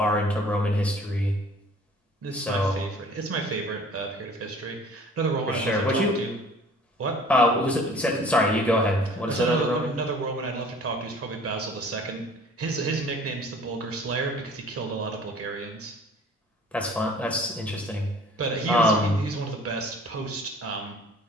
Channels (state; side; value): normal; both; correlation 0.50